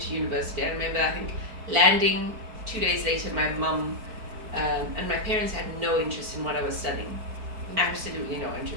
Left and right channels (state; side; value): late; left; 4.6 ms